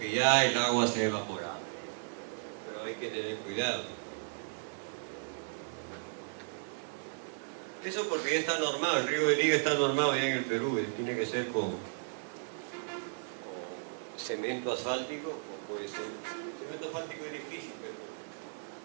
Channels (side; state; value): left; silent; 55 dB below the other